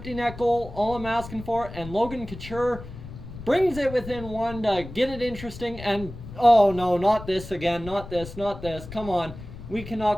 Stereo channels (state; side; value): noise; left; rumble, 13 dB below the sound